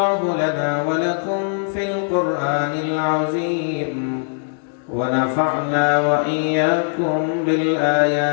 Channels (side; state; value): right; silent; digital silence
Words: لنا ولكم في القرآن العظيم ونفعنا وإياكم